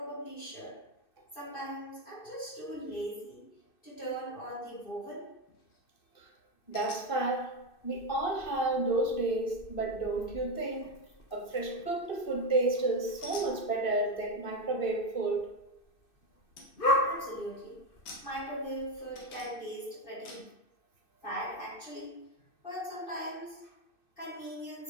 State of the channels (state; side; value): late; right; 2.6 ms